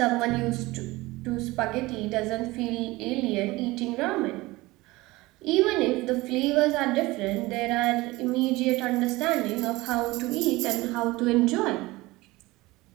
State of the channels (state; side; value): quieter; left; 20.5 dB